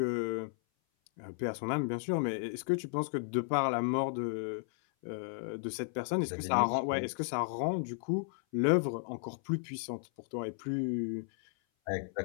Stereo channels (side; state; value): right; silent; 55 dB below the other